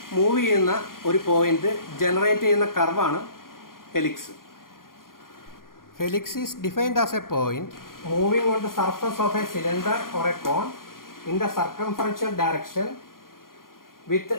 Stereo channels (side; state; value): right; late; 0.91 ms